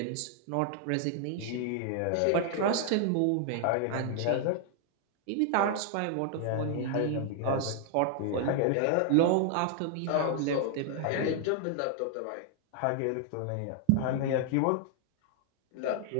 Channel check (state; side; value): different; both; correlation 0.00